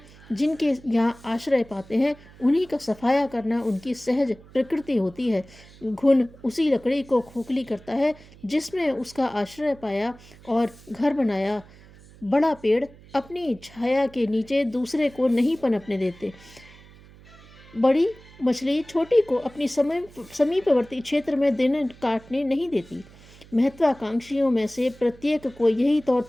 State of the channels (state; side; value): noise; right; hum, 23 dB below the sound